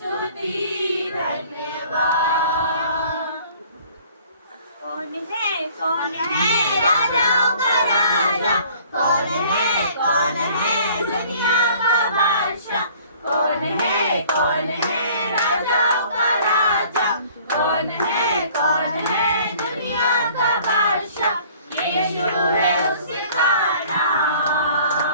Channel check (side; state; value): both; inverted; correlation -0.53